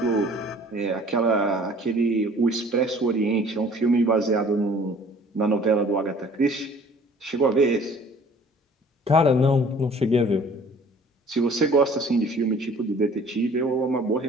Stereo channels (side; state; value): both; normal; correlation 0.52